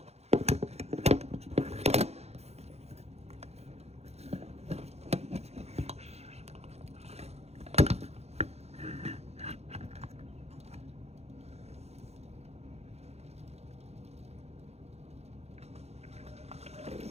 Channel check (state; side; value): late; left; 0.31 ms